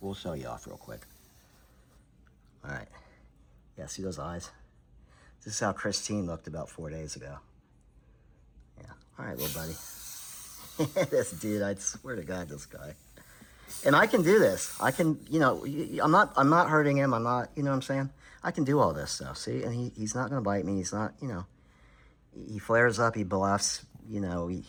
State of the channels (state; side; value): identical; both; correlation 1.00